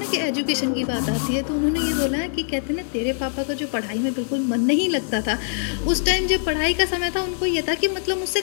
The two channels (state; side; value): silent; right; digital silence